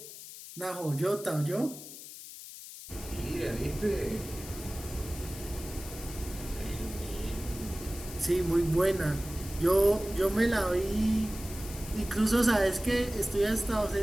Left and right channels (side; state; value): left; noise; hiss, 13 dB below the sound